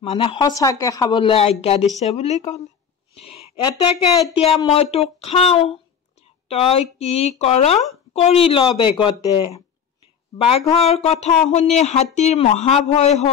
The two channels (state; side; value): quieter; right; 7.4 dB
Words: সঁচাকে খাবলৈ আজ্ঞা দিছে বুলি ক'লে। এতেকে এতিয়া মই তোক খাওঁ, তই কি কৰ কৰি ল বেগতে। বাঘৰ কথা শুনি হাতীৰ মহাভয়